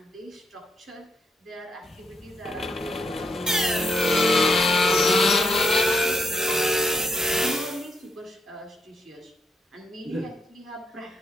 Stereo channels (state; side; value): normal; both; correlation 0.78